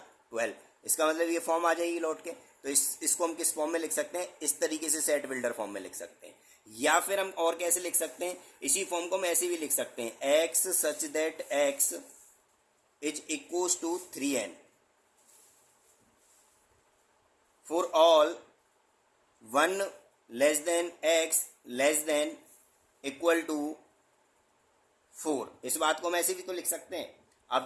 12। इसका मतलब ये फॉर्म आ जाएगी लौट के। तो इसको हम किस फॉर्म में लिख सकते हैं? इस तरीके से सेट बिल्डर फॉर्म में लिख सकते हैं। या फिर हम और कैसे लिख सकते हैं? इसी फॉर्म को हम ऐसे भी लिख सकते हैं x such that x is equals to 3n for all 1 less than x less than equal to 4। इस बात को हम ऐसे भी तो लिख सकते हैं। आप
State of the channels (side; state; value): both; identical; correlation 1.00